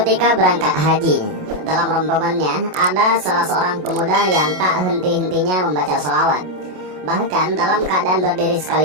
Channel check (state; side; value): late; left; 27 ms